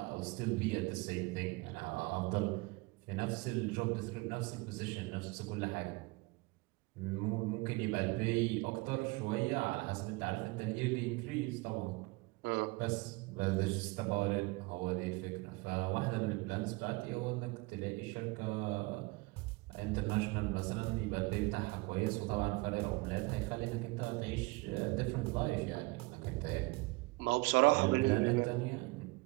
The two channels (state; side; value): quieter; left; 25.0 dB